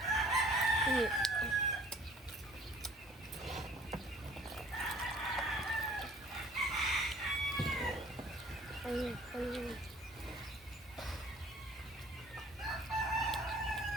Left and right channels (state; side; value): normal; both; correlation 0.53